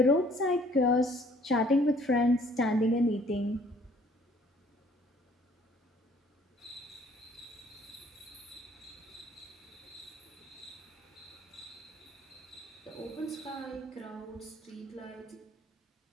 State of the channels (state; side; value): normal; both; correlation 0.58